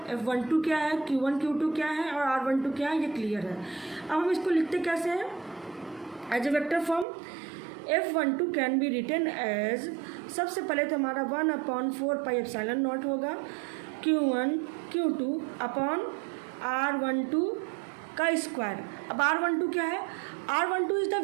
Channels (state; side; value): drops out; left; at 7.1 s